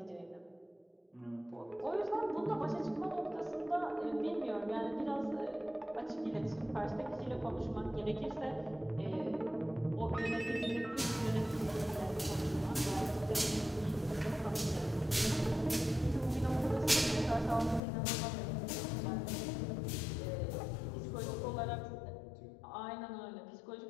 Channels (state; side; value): drops out; right; at 17.8 s